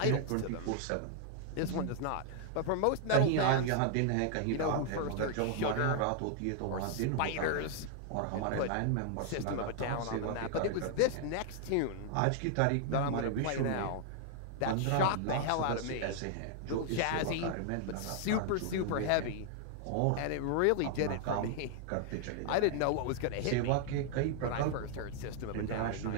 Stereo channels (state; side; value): different; both; correlation 0.00